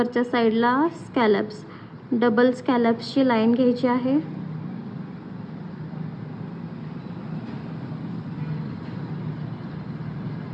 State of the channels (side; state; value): both; identical; correlation 1.00